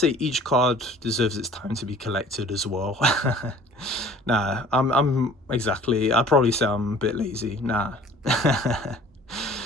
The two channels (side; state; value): both; normal; correlation 0.50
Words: each card deserves its time to be collected as well. Nah, I'd probably say I'm a bit lazy. Nah.